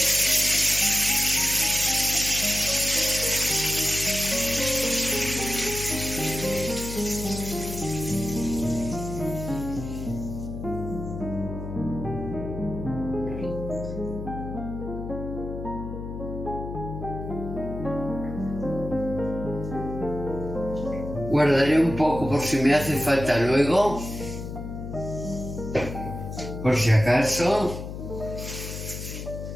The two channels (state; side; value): noise; left; hum, 8 dB below the sound